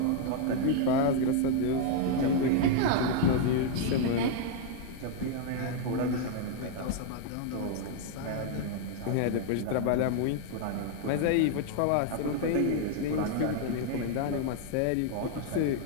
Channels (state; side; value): different; both; correlation 0.00